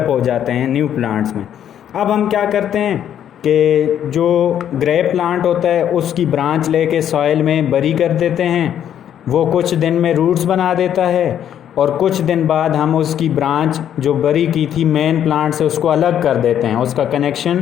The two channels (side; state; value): right; quieter; 9.9 dB